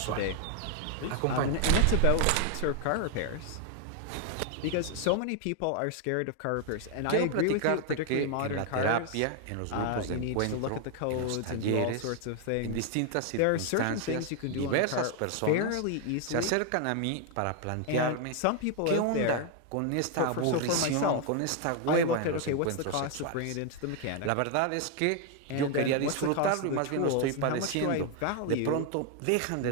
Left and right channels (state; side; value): different; both; correlation 0.00